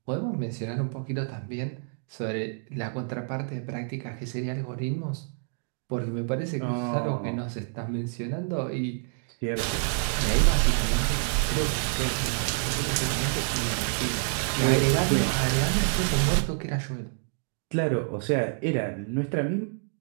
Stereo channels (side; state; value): left; silent; 56 dB below the other